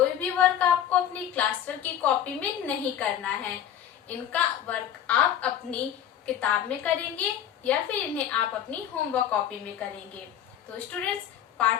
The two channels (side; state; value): right; quieter; 10.0 dB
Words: भी वर्क आपको अपनी क्लास वर्क की कॉपी में नहीं करना है। इनका वर्क आप अपनी किताब में करेंगे या फिर इन्हें आप अपनी होमवर्क कॉपी में करेंगे। तो स्टूडेंट्स,